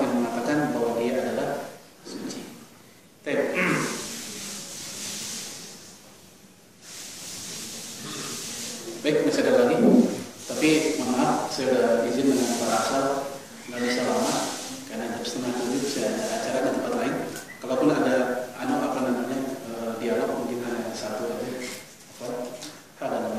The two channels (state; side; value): identical; both; correlation 1.00